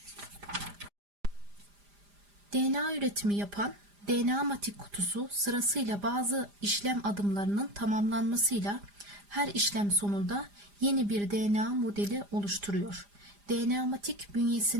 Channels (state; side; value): late; left; 5.0 ms